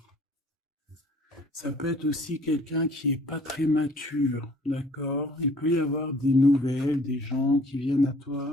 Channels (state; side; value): normal; both; correlation 0.55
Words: Ça peut être aussi quelqu'un qui est pas très mature, d'accord? Il peut y avoir des nouvelles, des gens qui viennent à